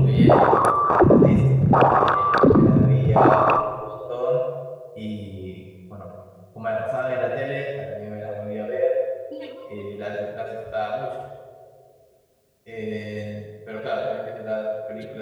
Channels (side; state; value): both; identical; correlation 1.00